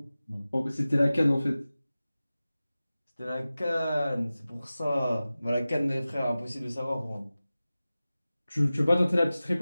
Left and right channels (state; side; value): inverted; both; correlation -0.96